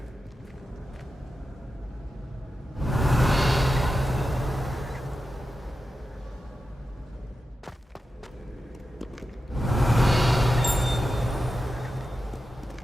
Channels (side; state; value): both; normal; correlation 0.91